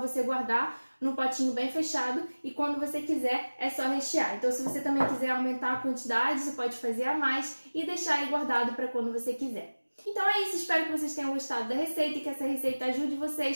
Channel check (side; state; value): both; inverted; correlation -1.00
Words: guardar num potinho bem fechado e quando você quiser é só rechear. Então se você também quiser aumentar a quantidade, você pode fazer a mais e deixar aí guardado para quando você quiser. Então é isso, espero que vocês tenham gostado da receita e que essa receita ajude